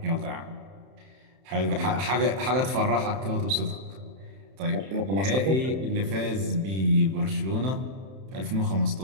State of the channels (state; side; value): late; left; 31 ms